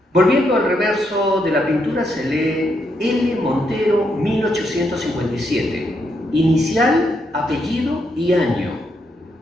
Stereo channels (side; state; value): both; normal; correlation 0.79